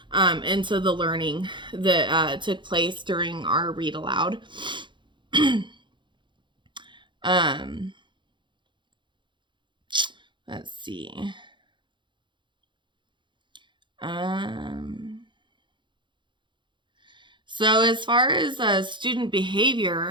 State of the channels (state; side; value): late; left; 0.23 ms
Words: into the learning that took place during our read aloud. Let's see. So as far as student